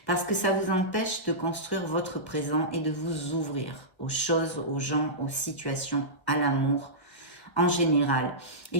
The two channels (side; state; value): right; late; 1.1 ms